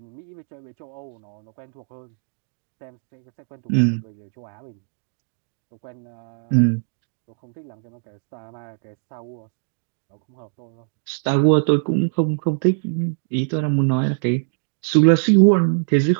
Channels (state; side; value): silent; left; digital silence